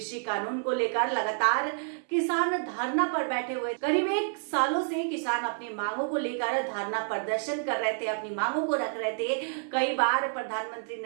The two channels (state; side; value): silent; left; 59 dB below the other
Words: कानून को लेकर लगातार किसान धरना पर बैठे हुए। करीब 1 सालों से किसान अपनी मांगों को लेकर धरना प्रदर्शन कर रहे थे, अपनी मांगों को रख रहे थे। कई बार प्रधानमंत्री